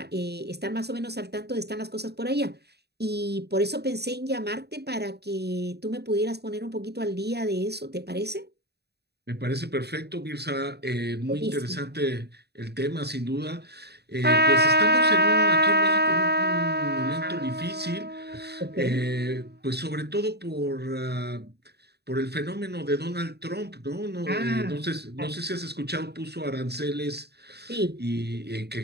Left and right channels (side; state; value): left; late; 0.48 ms